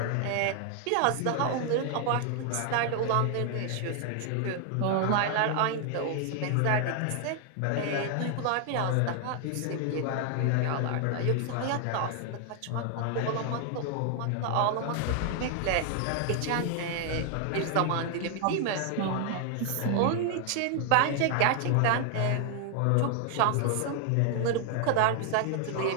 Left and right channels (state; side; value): different; both; correlation 0.00